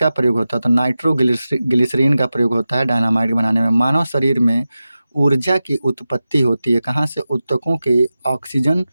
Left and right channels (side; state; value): both; inverted; correlation -0.94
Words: प्रयोग होता है? तो नाइट्रोग्लिसरीन का प्रयोग होता है डायनामाइट बनाने में। मानव शरीर में ऊर्जा की उत्पत्ति होती है कहाँ से?